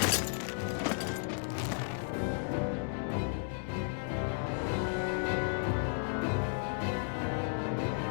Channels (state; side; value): silent; right; digital silence